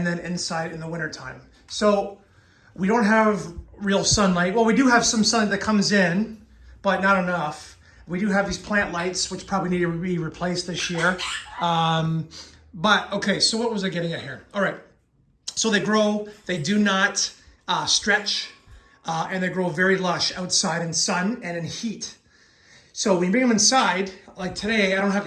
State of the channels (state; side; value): identical; both; correlation 1.00